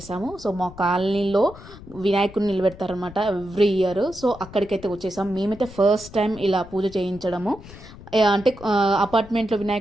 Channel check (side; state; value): left; noise; rumble, 17 dB below the sound